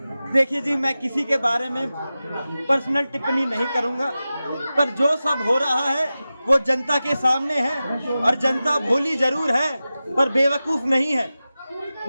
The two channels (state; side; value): inverted; both; correlation -0.94